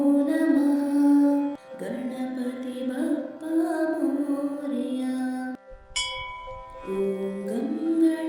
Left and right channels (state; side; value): identical; both; correlation 1.00